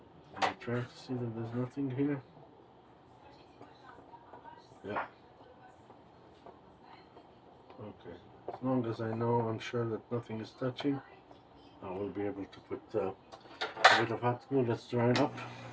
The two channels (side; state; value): both; identical; correlation 1.00